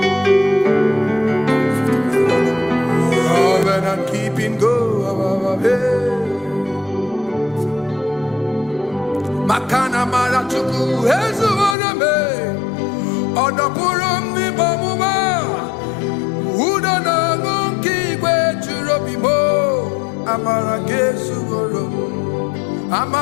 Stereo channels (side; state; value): right; drops out; at 11.8 s